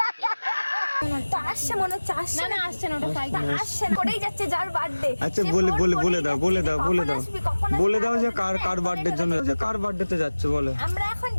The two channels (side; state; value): both; inverted; correlation -1.00